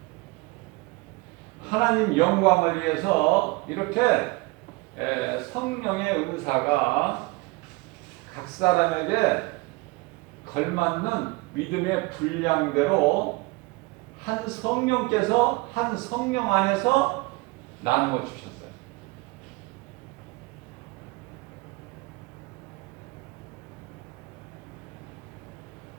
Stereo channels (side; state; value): left; quieter; 24.7 dB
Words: 하나님 영광을 위해서 이렇게 성령의 은사가 각 사람에게 걸맞는 믿음의 분량대로 한 성령께서 한 성령 안에서 나누어 주셨어요.